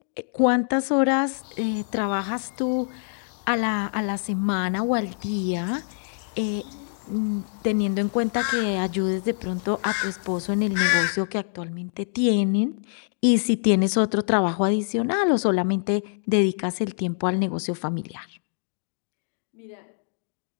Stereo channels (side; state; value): right; silent; digital silence